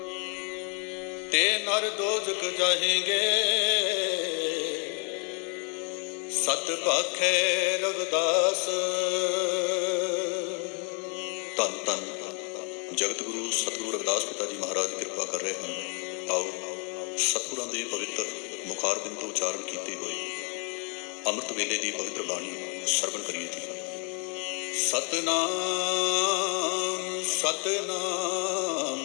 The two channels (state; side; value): quieter; right; 36.8 dB